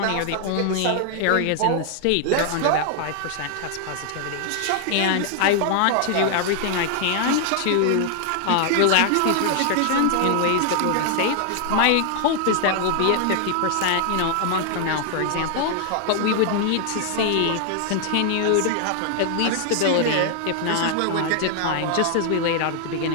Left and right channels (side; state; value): both; different; correlation 0.00